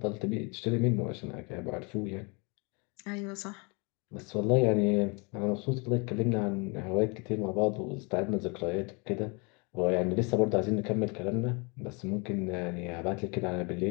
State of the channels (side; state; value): right; quieter; 31.1 dB